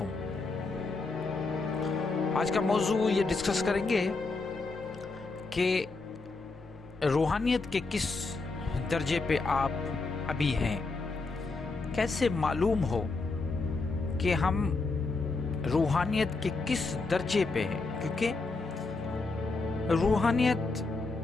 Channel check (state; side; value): quieter; right; 3.7 dB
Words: آج کا موضوع یہ ڈسکس کریں گے کہ روحانیت کے کس درجے پہ آپ ابھی ہیں، کیسے معلوم ہو کہ ہم روحانیت کے کس درجے پہ ہیں، کیونکہ روحانیت